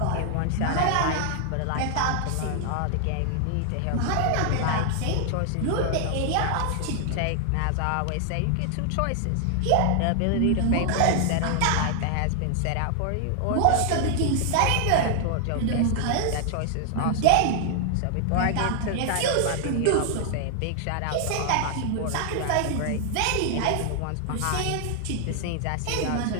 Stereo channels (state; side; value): different; both; correlation 0.00